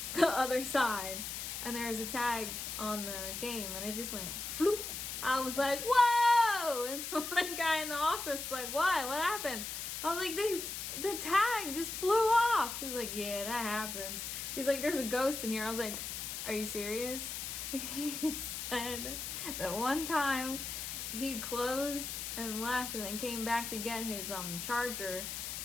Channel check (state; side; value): noise; left; hiss, 5 dB below the sound